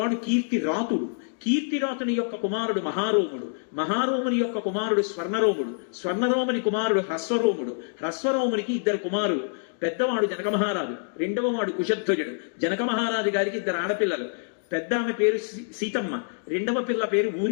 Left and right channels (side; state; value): right; silent; digital silence